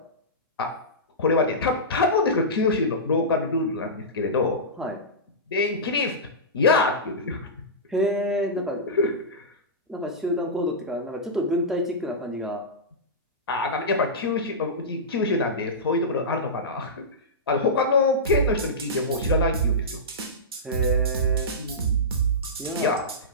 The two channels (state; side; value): normal; both; correlation -0.16